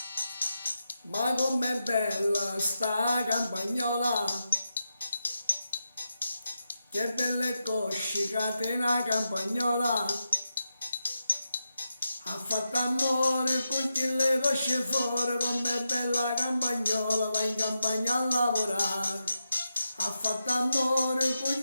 Ma com'è bella sta campagnola, che belle cosce catena campagnola, ha fatto amore con chi le cosce fuori, com'è bella campagnola, va in campagna a lavorare. Ha fatto amore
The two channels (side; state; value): both; inverted; correlation -0.87